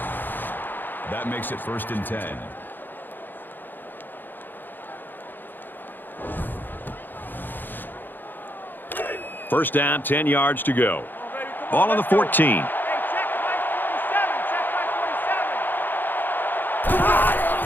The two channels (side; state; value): right; late; 0.091 ms